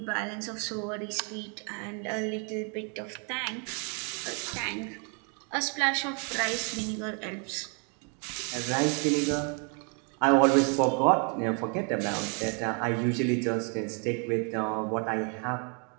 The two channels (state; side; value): quieter; left; 37.6 dB